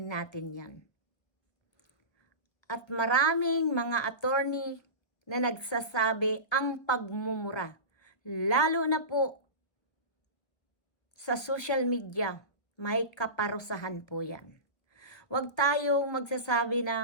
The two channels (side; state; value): right; late; 1.4 ms